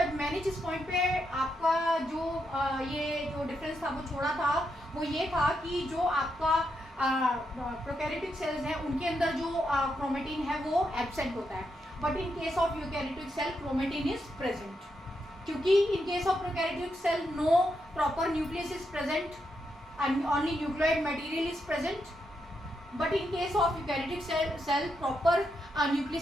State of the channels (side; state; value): both; normal; correlation 0.82